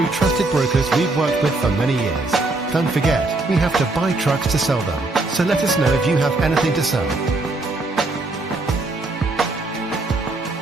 trusted brokers we've worked with for many years. Don't forget, we have to buy trucks to sell them, so let us know if you have anything to sell.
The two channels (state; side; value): quieter; left; 3.1 dB